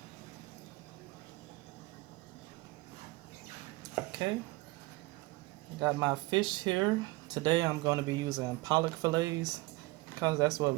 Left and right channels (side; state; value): left; quieter; 21.6 dB